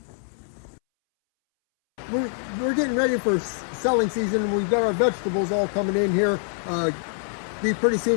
We're getting ready for selling season, and we've got our vegetables all coming in here. Pretty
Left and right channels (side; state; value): right; silent; 62 dB below the other